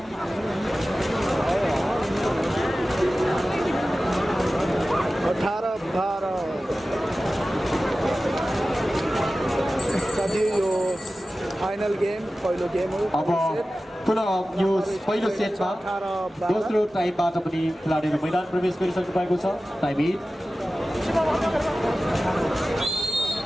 18-12 साथी यो फाइनल गेम पहिलो गेम हो। अब पुनः यो पहिलो सेटमा दोस्रो टाइमबाट पनि खेलाडीहरू मैदान प्रवेश गरिसक्नु भएको छ। टाइम इन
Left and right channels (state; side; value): normal; both; correlation 0.95